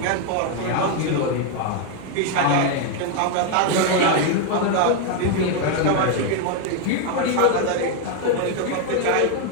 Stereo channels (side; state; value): both; different; correlation 0.01